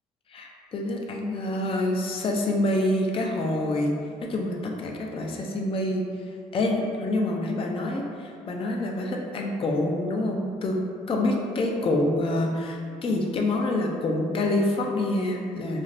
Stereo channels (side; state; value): both; normal; correlation 0.63